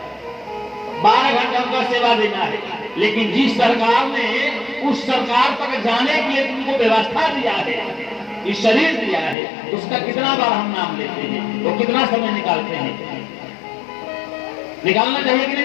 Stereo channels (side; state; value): right; drops out; at 9.3 s